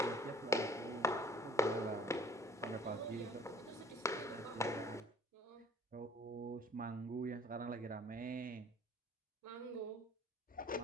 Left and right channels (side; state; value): both; normal; correlation 0.52